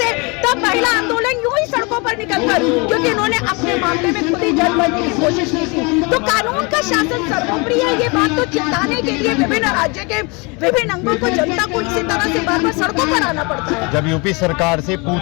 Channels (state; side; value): quieter; right; 29.2 dB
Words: तब महिला आंदोलन यूं ही सड़कों पर निकलकर, क्योंकि इन्होंने अपने मामले में खुद ही जज बनने की कोशिश की थी। तो कानून का शासन सर्वोपरि है, ये बात तो चिताने के लिए विभिन्न राज्य के विभिन्न अंगों को, जनता को इसी तरह से बार बार सड़कों पर आना पड़ता है। जब यूपी सरकार से